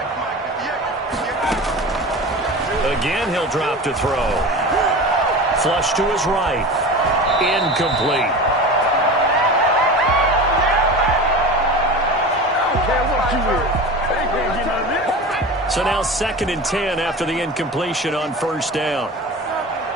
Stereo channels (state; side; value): normal; both; correlation 0.31